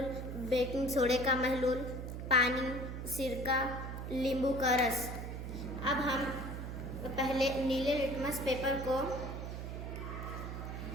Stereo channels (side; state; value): right; noise; hum, 6 dB below the sound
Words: बेकिंग सोडे का महलूल, पानी, सिरका, नींबू का रस। अब हम पहले नीले लिटमस पेपर को